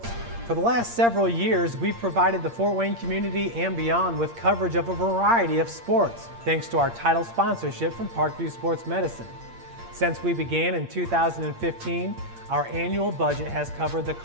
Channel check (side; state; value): left; late; 8.6 ms